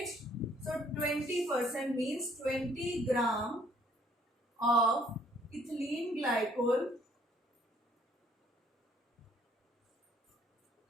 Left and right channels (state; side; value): normal; both; correlation 0.63